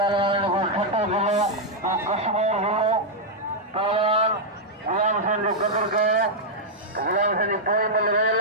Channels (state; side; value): normal; both; correlation -0.04